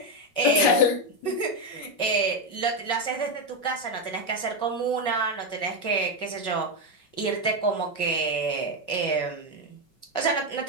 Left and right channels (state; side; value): late; right; 5.3 ms